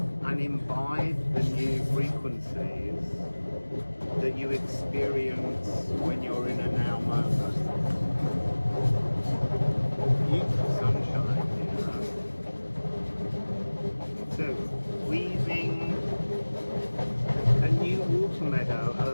and imbibe the new frequencies that you experience when you're in a now moment. Beautiful sunshine here. So, weaving a new water meadow,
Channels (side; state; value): both; inverted; correlation -1.00